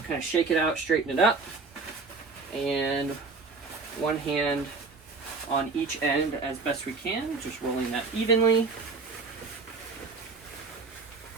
kind of shake it out, straighten it up, and one hand on each end as best we can, just rolling that evenly.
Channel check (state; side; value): quieter; left; 4.1 dB